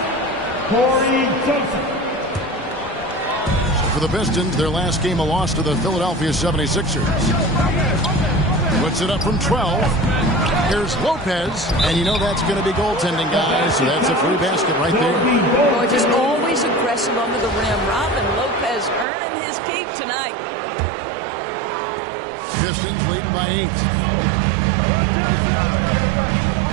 Corey Joseph. For the Pistons, their last game a loss to the Philadelphia 76ers. Puts it up from 12. Here's Lopez, and you know that's going to be goaltending, guys, so that's a free basket right there. Boy, just always aggressive under the rim. Robin Lopez earning his keep tonight. Pistons leading by 8.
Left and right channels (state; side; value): drops out; left; at 19.1 s